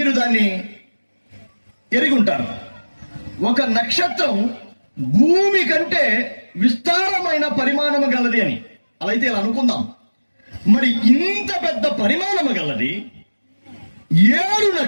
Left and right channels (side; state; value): both; inverted; correlation -1.00